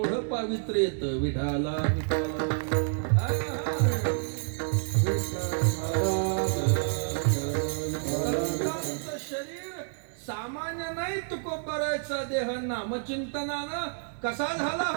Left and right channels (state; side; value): silent; left; digital silence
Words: पावित्र्य येतं. विठाला शरीर सामान्य नाही. तुकोबारायचा देह नामचिंतनानं कसा झाला